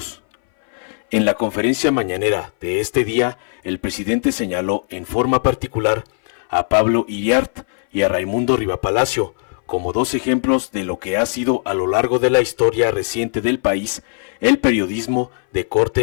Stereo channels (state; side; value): silent; right; 60 dB below the other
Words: En la conferencia mañanera de este día, el presidente señaló en forma particular a Pablo Iriart y a Raimundo Rivapalacio como dos ejemplos de lo que ha sido a lo largo de la historia reciente del país el periodismo de